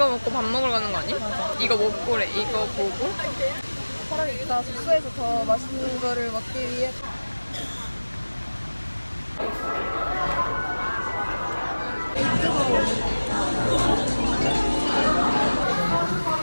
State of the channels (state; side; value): inverted; both; correlation -1.00